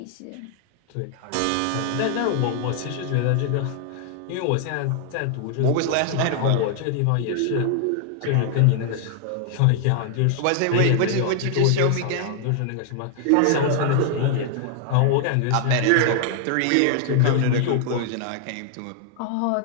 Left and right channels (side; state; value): both; different; correlation 0.00